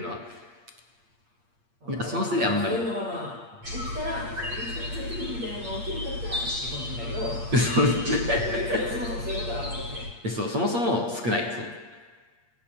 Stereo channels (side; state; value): left; late; 8.6 ms